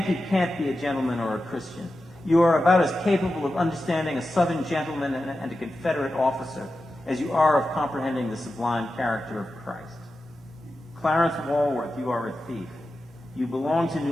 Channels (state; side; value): normal; both; correlation 0.92